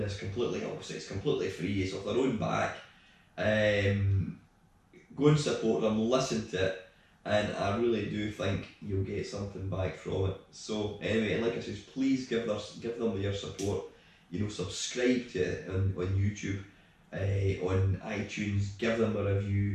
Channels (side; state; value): both; identical; correlation 1.00